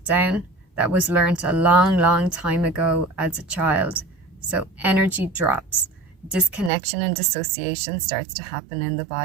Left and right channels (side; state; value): left; drops out; at 6.7 s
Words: that was learned a long, long time ago as a child. So energy drops, disconnection and dissociation starts to happen in the